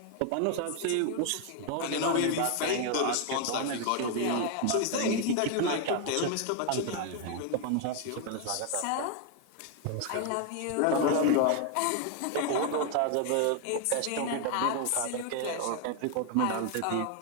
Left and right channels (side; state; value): both; different; correlation 0.01